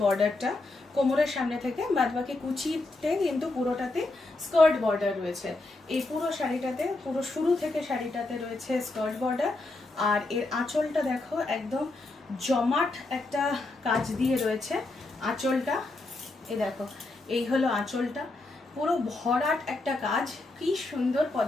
বর্ডারটা, কোমরের সামনে থেকে বাদবাকি কুচিতে কিন্তু পুরোটাতে স্কার্ট বর্ডার রয়েছে। এই পুরো শাড়িটাতে, পুরো শুরু থেকে শাড়িটাতে রয়েছে স্কার্ট বর্ডার। আর এর আঁচলটা দেখো একদম জমাট একটা কাজ দিয়ে রয়েছে আঁচলটা। এই দেখো, এই হলো আঁচলটা, পুরো ভরাট একটা কাজ, কি সুন্দর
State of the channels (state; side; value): quieter; right; 3.1 dB